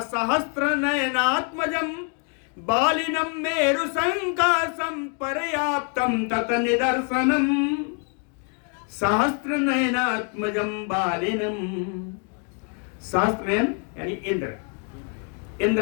सहस्त्र नयनात्मजम बालिनम मेरु संकासम पर्याप्तम तत निदर्शनम। सहस्त्र नयनात्मजम बालिनम, सहस्त्र नयन यानी इंद्र,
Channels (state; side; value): quieter; right; 38.9 dB